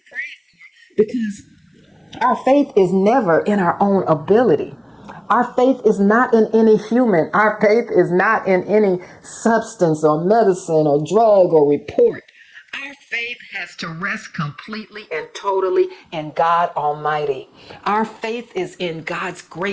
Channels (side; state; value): both; identical; correlation 1.00